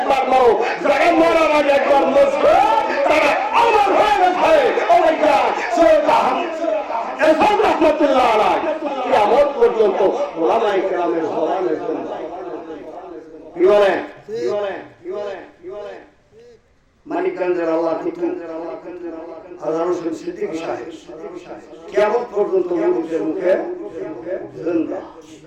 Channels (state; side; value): identical; both; correlation 1.00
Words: মরো, যারা মরার আগে একবার মরছে তারা আমার হয়ে গেছে। রহমতুল্লাহ আলাইহি কিয়ামত পর্যন্ত ওলামায়ে কেরামের জবানের জন্য কি বলে মানিকগঞ্জের আল্লাহ কুতুব হাজার হোসেন সিদ্দিকী সাহেব কিয়ামত পর্যন্ত মুরিদের মুখে জিন্দা।